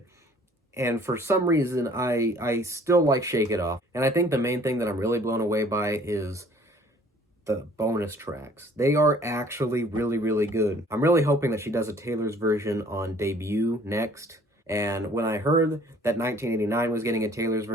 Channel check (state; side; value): normal; both; correlation 0.55